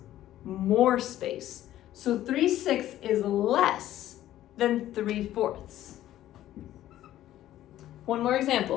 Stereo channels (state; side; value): quieter; right; 13.3 dB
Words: more space. So 3/6 is less than 3/4. One more